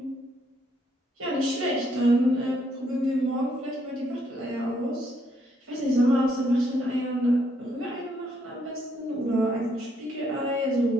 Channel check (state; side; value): normal; both; correlation 0.72